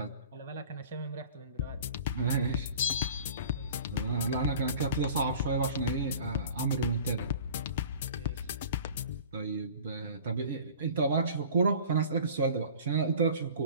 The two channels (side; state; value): both; inverted; correlation -0.43